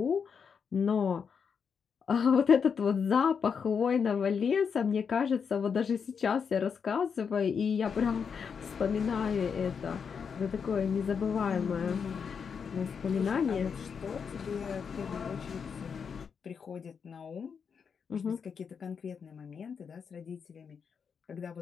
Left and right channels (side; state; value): right; quieter; 6.4 dB